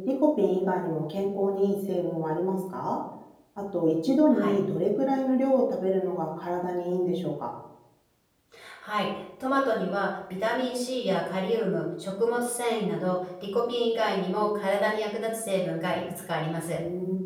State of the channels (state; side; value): identical; both; correlation 1.00